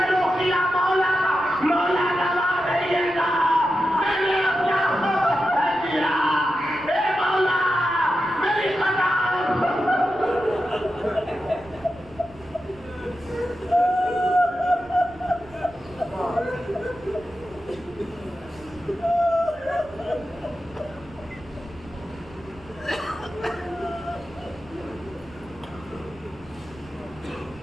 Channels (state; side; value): noise; right; rumble, 22 dB below the sound